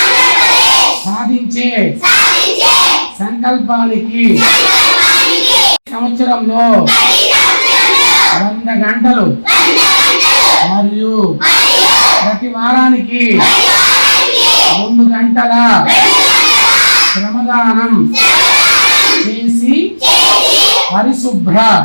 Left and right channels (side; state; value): both; inverted; correlation -1.00